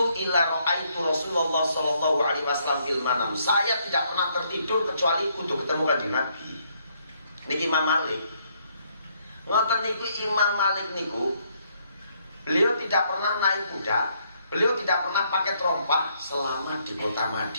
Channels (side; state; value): both; inverted; correlation -0.71